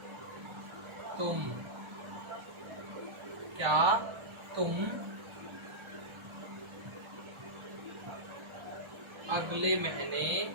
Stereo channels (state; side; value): late; left; 1.4 ms